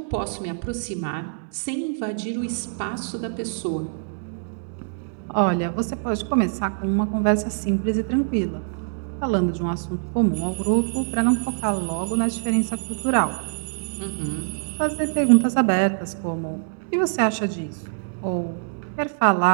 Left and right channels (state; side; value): silent; left; digital silence